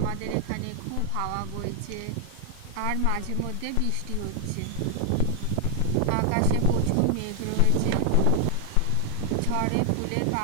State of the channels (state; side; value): different; both; correlation 0.00